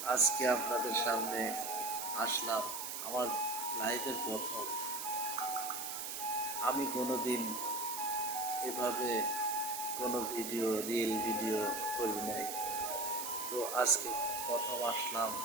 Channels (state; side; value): noise; right; hiss, 5 dB below the sound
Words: আজকে আপনাদের সামনে আসলাম আমার লাইফের প্রথম। আমি কোনোদিন এভাবে কোনো রিল ভিডিও করি নাই। তো আজকে প্রথম আসলাম